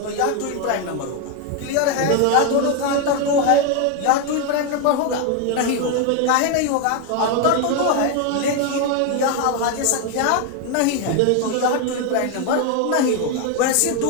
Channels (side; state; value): both; different; correlation 0.01